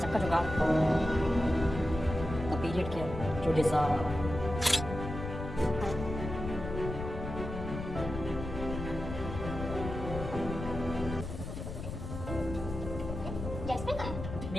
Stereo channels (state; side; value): noise; left; rumble, 7 dB below the sound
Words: का जुगाड़। The period care you deserve. Jasmine कहाँ है?